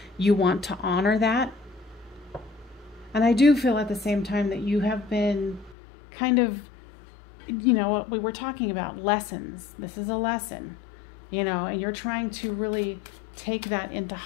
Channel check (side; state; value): right; drops out; at 5.8 s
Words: you want to honor that. And I do feel at the same time that you have been kind of, you know, what we were talking about, lessons. This is a lesson. You know, and you're trying to really take that into